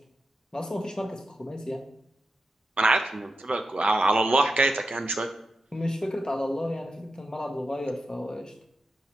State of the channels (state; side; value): normal; both; correlation 0.89